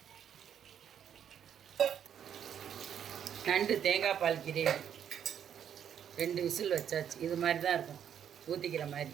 நண்டு தேங்காய் பால் கிரேவி 2 விசில் வச்சாச்சு. இது மாதிரி தான் இருக்கும், ஊற்றிக்கிற மாதிரி.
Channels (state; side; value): quieter; left; 8.9 dB